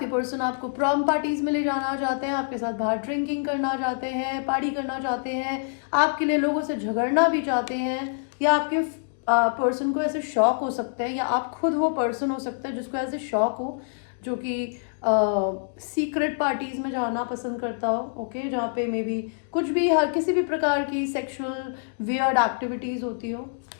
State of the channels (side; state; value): right; silent; digital silence